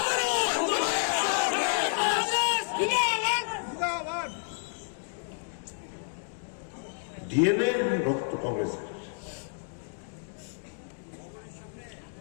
ডিএনএ রক্ত কংগ্রেসের।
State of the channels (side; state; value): right; silent; digital silence